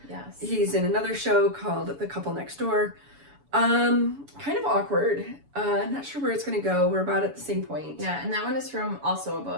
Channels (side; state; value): left; late; 7.0 ms